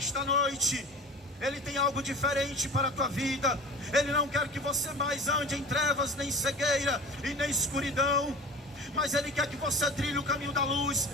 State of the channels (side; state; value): both; normal; correlation 0.37